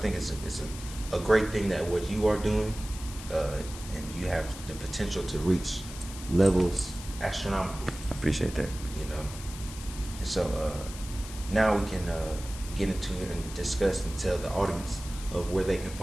it's a great thing that what you are doing, and you have the potential to reach levels astronomical. I appreciate that. And so now we can get into it and discuss and tell the audience of where they can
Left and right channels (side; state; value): left; noise; hiss, 13 dB below the sound